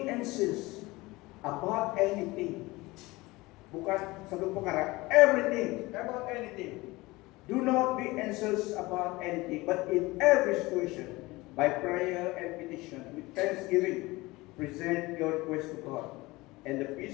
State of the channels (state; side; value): quieter; right; 21.3 dB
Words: anxious about anything. Bukan satu perkara, everything, about anything. Do not be anxious about anything, but in every situation, by prayer and petition, with thanksgiving, present your request to God. And the